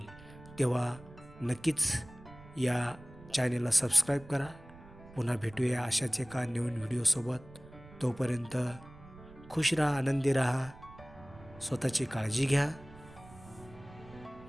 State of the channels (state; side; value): noise; right; rumble, 20 dB below the sound